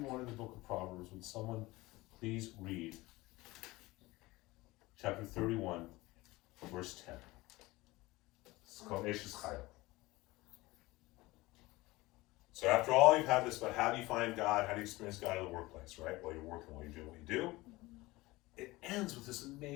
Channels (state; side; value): quieter; right; 20.4 dB